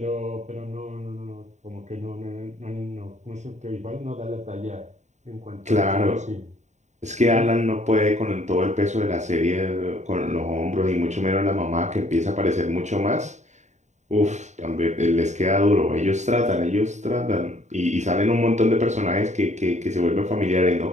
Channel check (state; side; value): late; left; 0.34 ms